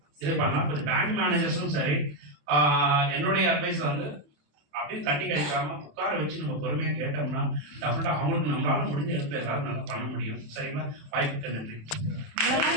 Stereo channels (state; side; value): late; left; 27 ms